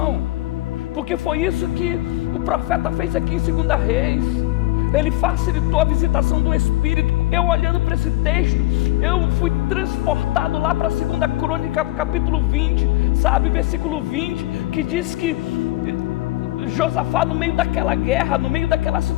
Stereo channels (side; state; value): right; quieter; 18.5 dB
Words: Porque foi isso que o profeta fez aqui em 2 Reis. Ele facilitou a visitação do Espírito. Eu olhando para esse texto, eu fui transportado lá para 2 Crônica, capítulo 20, sabe, versículo 20, que diz que Josafá, no meio daquela guerra, no meio daquela